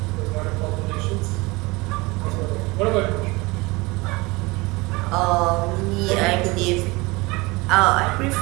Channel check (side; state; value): left; quieter; 23.8 dB